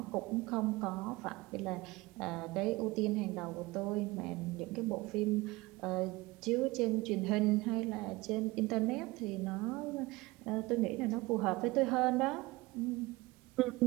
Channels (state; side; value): quieter; left; 21.7 dB